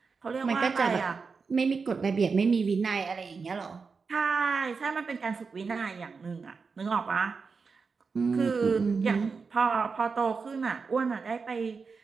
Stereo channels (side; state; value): left; quieter; 5.0 dB